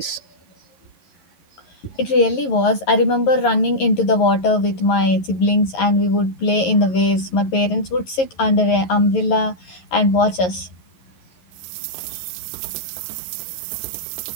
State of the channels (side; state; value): right; late; 11 ms